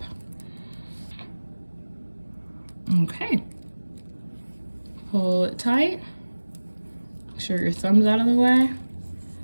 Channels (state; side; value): inverted; both; correlation -1.00